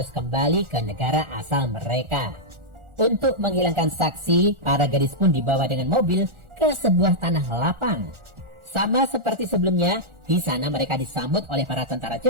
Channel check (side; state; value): left; late; 1.4 ms